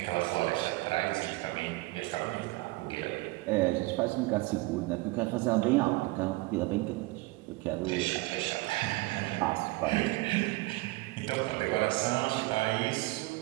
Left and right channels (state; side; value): quieter; left; 21.8 dB